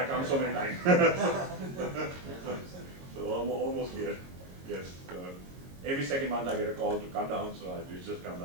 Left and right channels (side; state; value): left; late; 22 ms